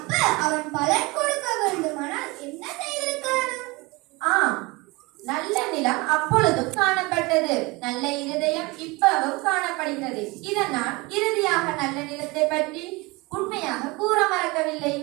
அவன் பலன் கொடுக்க வேண்டுமானால் என்ன செய்திருக்கணும்? நல்ல நிலம் அப்பொழுதும் காணப்பட்டது, நல்ல இருதயம் இப்பவும் காணப்படுகிறது. இதனால் இறுதியாக நல்ல நிலத்தை பற்றி உண்மையாக கூற மறக்கவில்லை.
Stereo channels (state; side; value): quieter; left; 24.3 dB